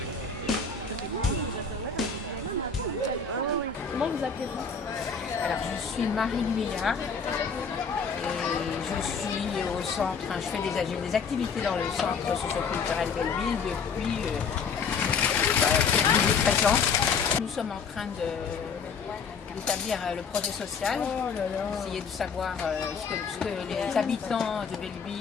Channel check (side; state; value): right; quieter; 5.6 dB